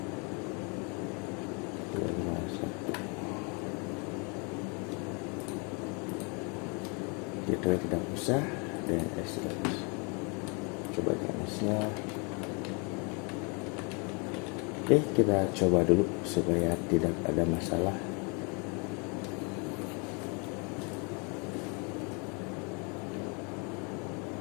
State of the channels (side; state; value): right; quieter; 33.2 dB